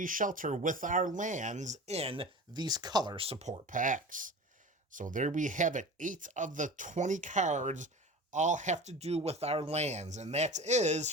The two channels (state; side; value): normal; both; correlation 0.34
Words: Shelter with our lands in these color support packs. So there we have it. 8 of the 20 cards all have to do with our lands, and that is,